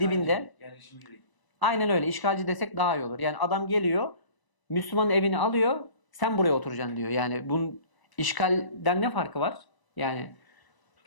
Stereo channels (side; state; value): right; late; 1.0 ms